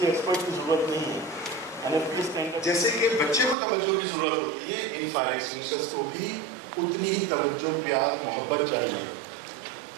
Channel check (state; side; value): drops out; left; at 3.6 s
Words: ایکسپرٹ کی ضرورت نہیں ہے. جیسے کہ بچے کو توجہ کی ضرورت ہوتی ہے، ان فائر ایکسٹنگوشرز کو بھی اتنی ہی توجہ، پیار، محبت چاہیے.